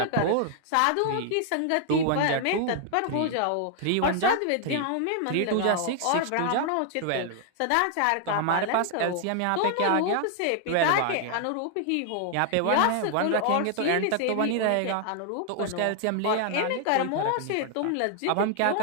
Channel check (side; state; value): both; different; correlation 0.00